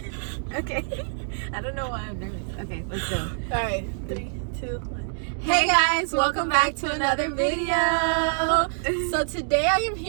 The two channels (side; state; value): left; silent; digital silence